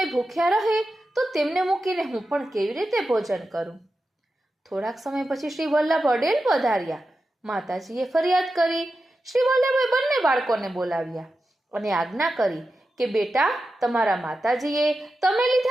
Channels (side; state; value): both; normal; correlation 0.91